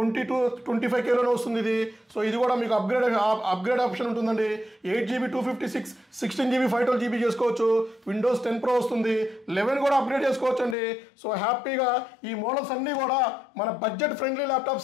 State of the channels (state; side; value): drops out; right; at 10.8 s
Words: వస్తుంది ఇది. సో ఇది కూడా మీకు అప్గ్రేడ్ ఆప్షన్ ఉంటుందండి. 8GB 256, 16GB 512GB చేసుకోవచ్చు. విండోస్ 10 Pro వస్తుంది, 11 కూడా అప్గ్రేడ్ చేసుకోవచ్చు అండి. సో హ్యాపీగా ఈ మోడల్స్ అన్నీ కూడా మన బడ్జెట్ ఫ్రెండ్లీ